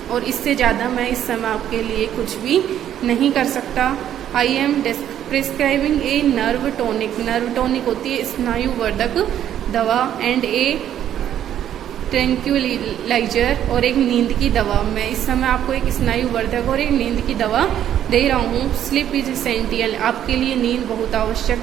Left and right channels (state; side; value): quieter; left; 10.6 dB